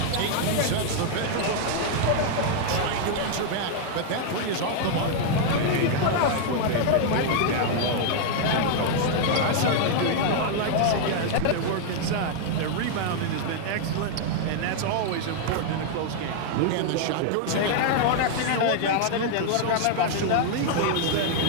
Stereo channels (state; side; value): different; both; correlation 0.00